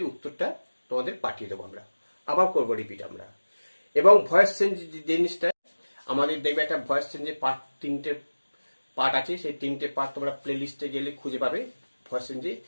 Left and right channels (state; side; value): inverted; both; correlation -1.00